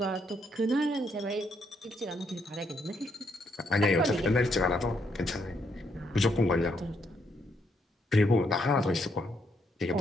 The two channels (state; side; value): normal; both; correlation 0.75